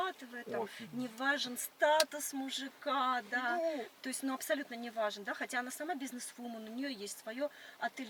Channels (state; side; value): identical; both; correlation 1.00